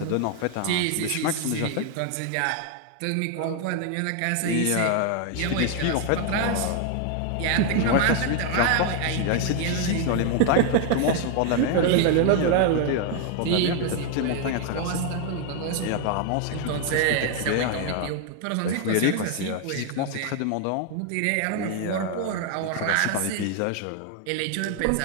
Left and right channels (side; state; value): both; different; correlation 0.00